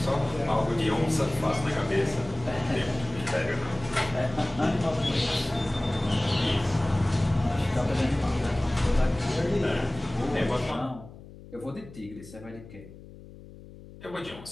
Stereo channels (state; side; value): noise; left; hum, 18 dB below the sound